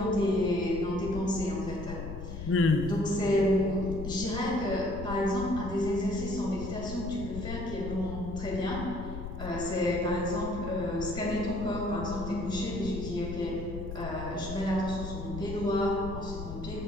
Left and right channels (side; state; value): left; noise; rumble, 8 dB below the sound